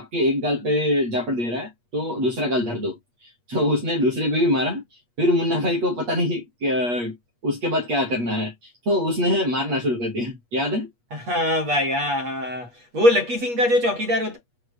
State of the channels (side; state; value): left; late; 8.4 ms